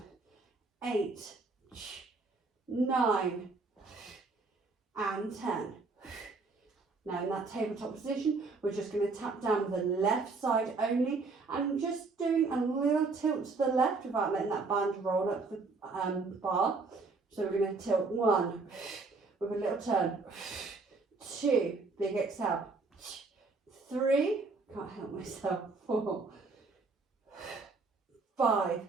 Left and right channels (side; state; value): left; quieter; 4.0 dB